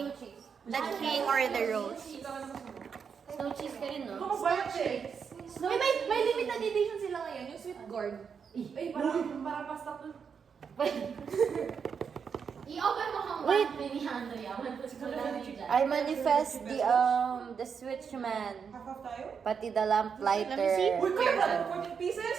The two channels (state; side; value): quieter; left; 6.5 dB